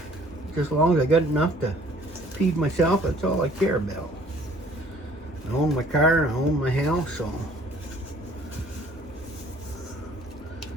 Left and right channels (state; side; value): normal; both; correlation 0.56